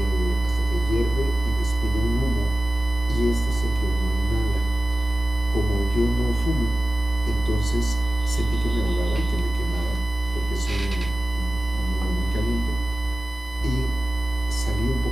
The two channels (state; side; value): normal; both; correlation 0.95